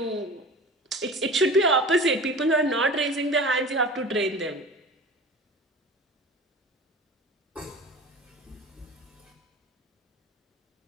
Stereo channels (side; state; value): both; normal; correlation 0.37